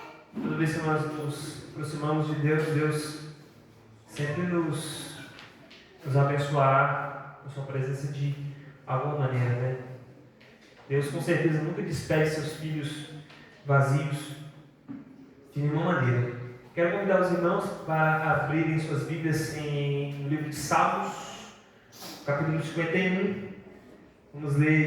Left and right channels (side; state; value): both; identical; correlation 1.00